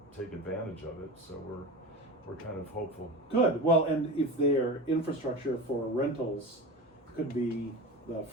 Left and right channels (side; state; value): both; normal; correlation 0.28